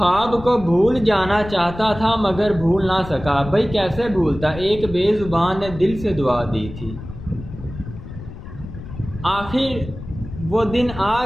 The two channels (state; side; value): noise; left; rumble, 13 dB below the sound